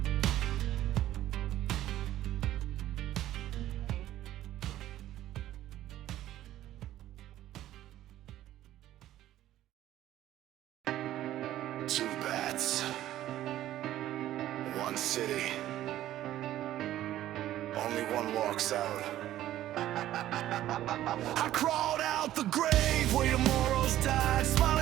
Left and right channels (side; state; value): left; quieter; 13.4 dB